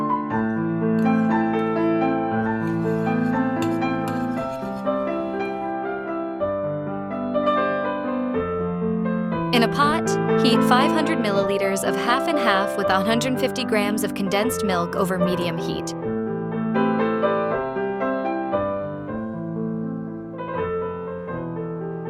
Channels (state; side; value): identical; both; correlation 1.00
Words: In a pot, heat 500 milliliters of half and half with 150 grams of condensed milk over medium heat.